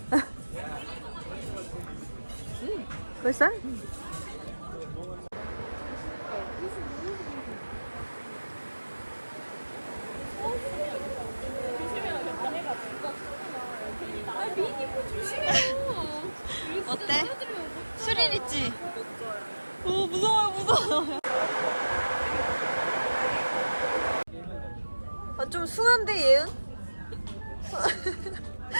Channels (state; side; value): inverted; both; correlation -1.00